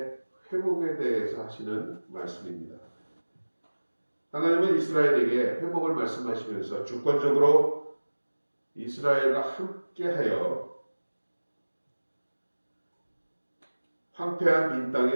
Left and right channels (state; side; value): inverted; both; correlation -1.00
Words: 회복에 대해서 하시는 말씀입니다. 하나님은 이스라엘에게 회복을 말씀하시면서 주권적으로 이스라엘과 함께하여 황폐한 빈